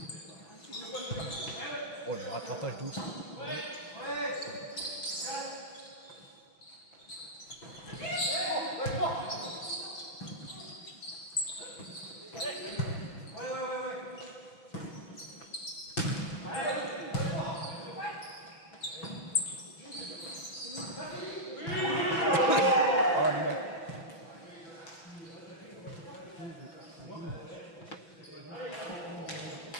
Oh, le rattrapage douce.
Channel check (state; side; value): late; right; 6.0 ms